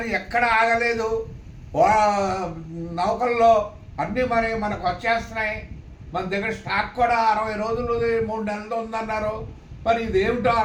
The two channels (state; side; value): identical; both; correlation 1.00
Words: ఎక్కడ ఆగలేదు. నౌకల్లో అన్నీ మనకు వచ్చేస్తున్నాయి. మన దగ్గర స్టాక్ కూడా 60 రోజులు 3 నెలలు ఉందన్నారు. మరి ఇది ఏమిటో